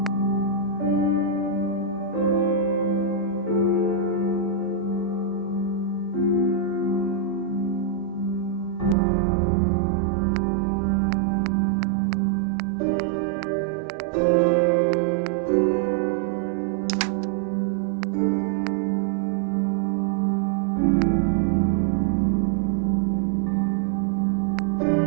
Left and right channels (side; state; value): left; drops out; at 9.0 s